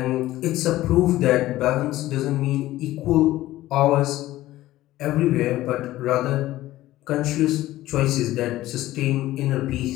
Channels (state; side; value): quieter; right; 15.8 dB